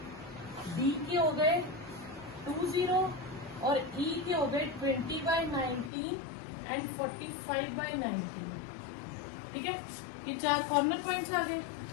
D के हो गए 2, 0 और E के हो गए 20/19 एंड 45/19, ठीक है। ये 4 कॉर्नर पॉइंट्स आ गए।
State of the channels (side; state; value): right; drops out; at 5.9 s